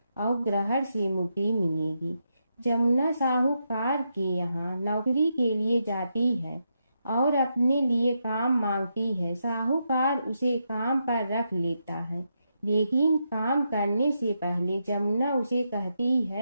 और ग्रहण से मुक्ति मिलेगी। जमुना साहूकार के यहाँ नौकरी के लिए जाती है और अपने लिए काम मांगती है। साहूकार उसे काम पर रख लेता है, लेकिन काम करने से पहले जमुना उसे कहती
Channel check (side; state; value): both; inverted; correlation -0.83